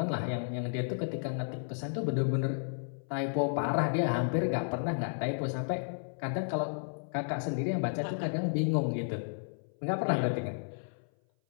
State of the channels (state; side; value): silent; right; 56 dB below the other